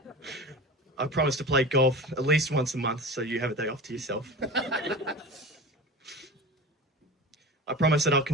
I promise to play golf at least once a month so you have a day off to yourself. I promise that I'll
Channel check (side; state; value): both; normal; correlation 0.31